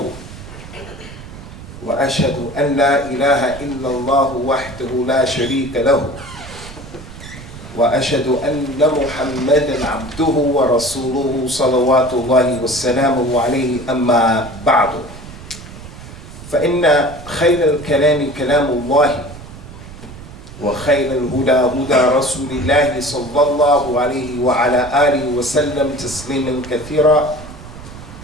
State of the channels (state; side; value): noise; right; rumble, 15 dB below the sound